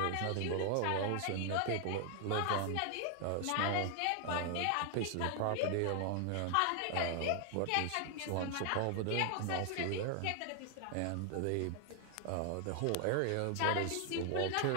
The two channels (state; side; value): different; both; correlation 0.00